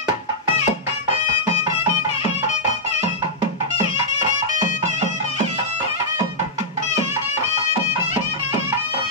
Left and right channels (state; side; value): normal; both; correlation -0.10